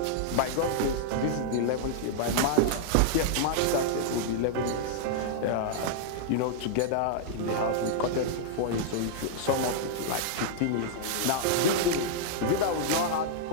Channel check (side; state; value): both; different; correlation -0.01